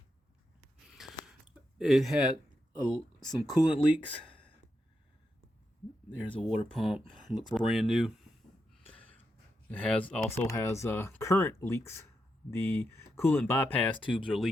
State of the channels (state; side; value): normal; both; correlation 0.85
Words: It had some coolant leaks. There's a water pump. Looks brand new. It also has current leaks. The coolant bypass tubes are